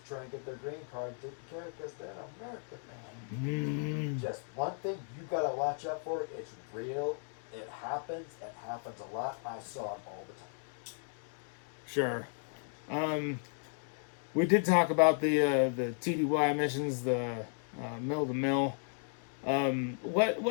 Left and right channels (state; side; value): silent; right; 54 dB below the other